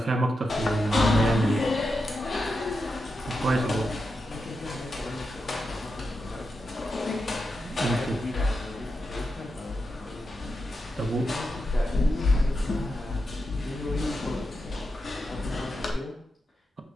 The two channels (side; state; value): both; normal; correlation 0.87